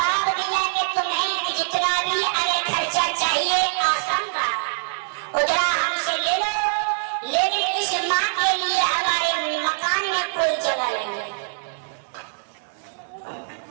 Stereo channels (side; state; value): left; silent; digital silence